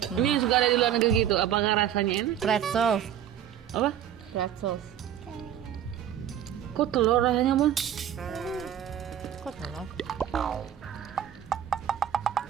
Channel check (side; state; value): left; quieter; 10.3 dB